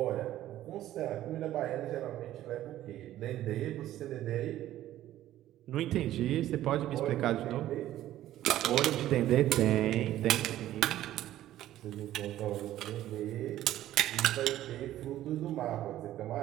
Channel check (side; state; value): left; quieter; 13.5 dB